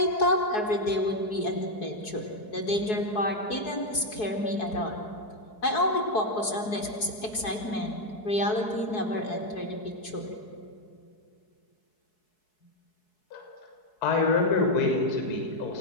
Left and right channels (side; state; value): right; late; 4.7 ms